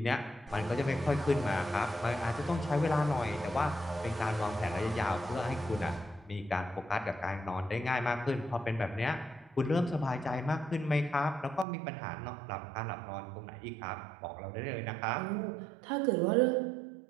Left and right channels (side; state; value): left; drops out; at 11.7 s